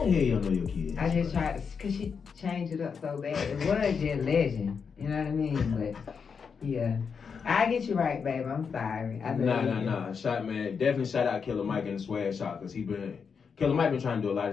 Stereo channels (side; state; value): right; quieter; 6.0 dB